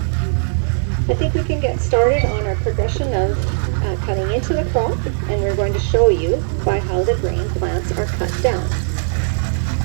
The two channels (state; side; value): silent; left; 57 dB below the other